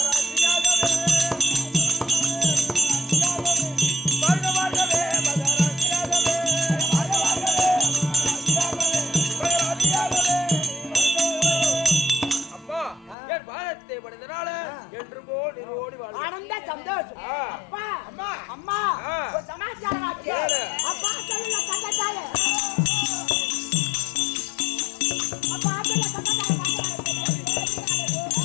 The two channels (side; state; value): right; drops out; at 13.2 s